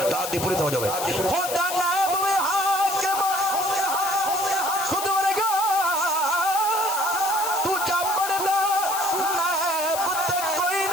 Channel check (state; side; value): noise; left; hiss, 6 dB below the sound